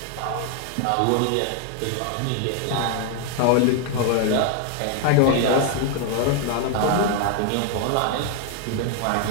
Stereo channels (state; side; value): different; both; correlation 0.00